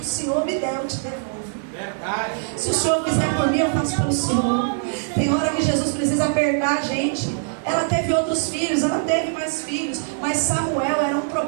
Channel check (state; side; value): silent; left; digital silence